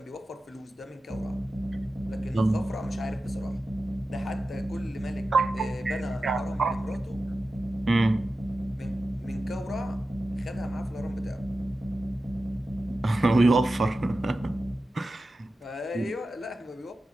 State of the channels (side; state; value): both; normal; correlation 0.93